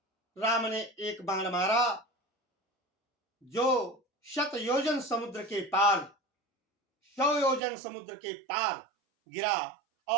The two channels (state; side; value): drops out; left; at 7.6 s